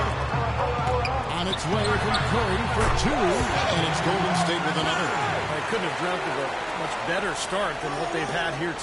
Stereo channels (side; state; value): both; identical; correlation 1.00